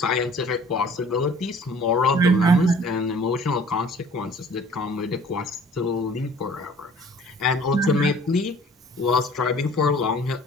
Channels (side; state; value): both; normal; correlation 0.51